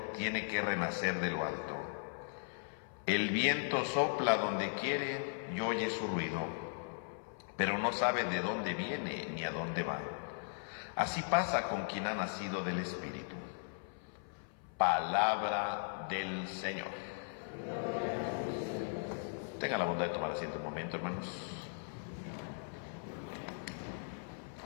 tiene que renacer de lo alto. El viento sopla donde quiere y oye su ruido, pero no sabe de dónde viene ni a dónde va. Así pasa con quien ha nacido del Espíritu. Palabra del Señor. Tengan la bondad de tomar asiento un momento, hermanos.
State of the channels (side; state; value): right; silent; 52 dB below the other